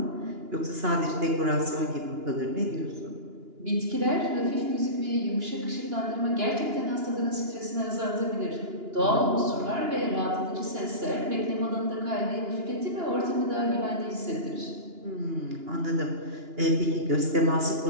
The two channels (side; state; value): left; late; 2.9 ms